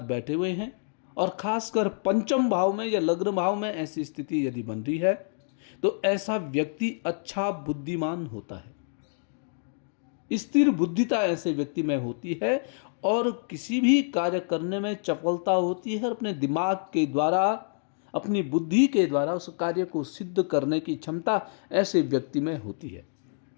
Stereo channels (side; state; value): right; silent; digital silence